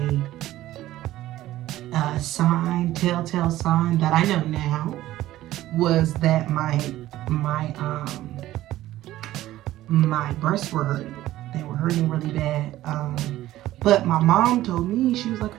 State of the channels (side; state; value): left; quieter; 14.9 dB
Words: telltale sign that I know now was that my breasts were hurting. They were hurting really bad. But my mom told me, she was like,